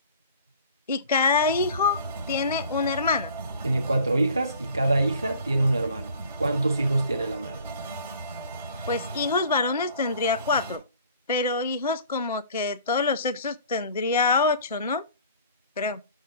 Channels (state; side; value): inverted; both; correlation -0.49